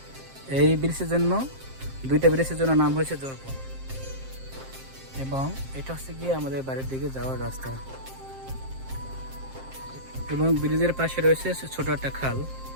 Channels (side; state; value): left; late; 7.5 ms